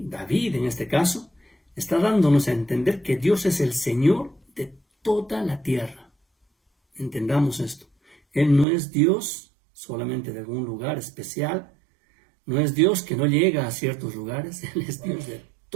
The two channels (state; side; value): drops out; left; at 8.7 s